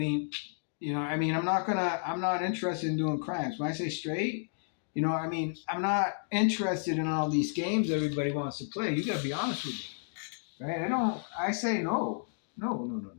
not interested in doing crimes. When I say straight, I'm not interested in all these games everybody wants to play. You gotta be honest with me, right? I say no. No.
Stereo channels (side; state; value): right; silent; digital silence